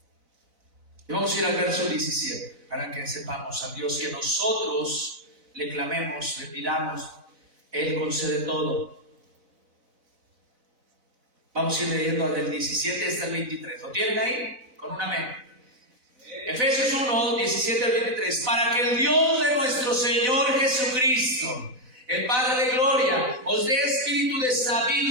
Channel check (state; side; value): late; left; 4.0 ms